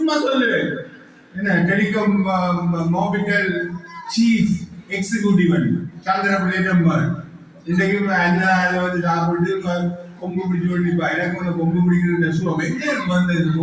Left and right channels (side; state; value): both; identical; correlation 1.00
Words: சொல்லுவேன். என்ன telecom Mobitel chief executive சந்திரபிள்ளை number இன்றைக்கு என்ன வந்து சாப்பிட்டு கொம்பு பிடிச்சு கொண்டிருப்பா. எனக்கு வந்து கொம்பு பிடிக்கிற சுவம் எங்கே வந்தது?